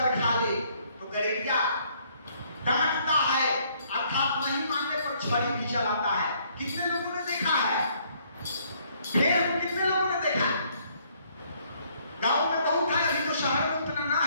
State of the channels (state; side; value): inverted; both; correlation -0.66